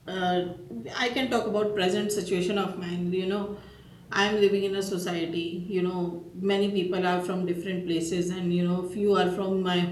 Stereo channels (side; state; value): both; identical; correlation 1.00